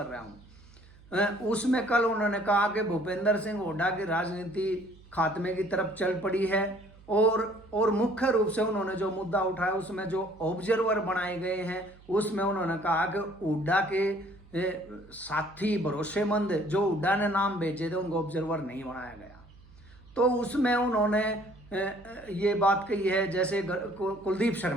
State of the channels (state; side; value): noise; right; hum, 24 dB below the sound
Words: रहा हूँ। उसमें कल उन्होंने कहा कि भूपेंद्र सिंह हुड्डा की राजनीति खात्मे की तरफ चल पड़ी है और मुख्य रूप से उन्होंने जो मुद्दा उठाया उसमें जो ऑब्जर्वर बनाए गए हैं उसमें उन्होंने कहा कि हुड्डा के साथी भरोसेमंद जो हुड्डा ने नाम भेजे थे उनको ऑब्जर्वर नहीं बनाया गया। तो उसमें उन्होंने ये बात कही है, जैसे कुलदीप